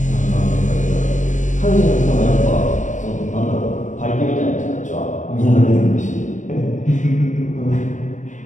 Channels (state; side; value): late; right; 0.36 ms